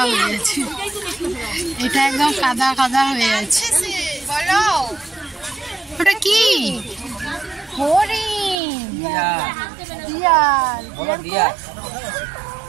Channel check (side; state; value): left; drops out; at 8.6 s